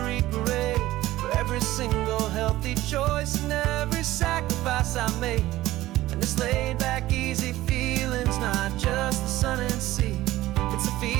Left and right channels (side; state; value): left; quieter; 16.2 dB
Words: parade. For every single healthy choice and every sacrifice I made. And this laid back, easy feeling's not just the sun and sea. It's a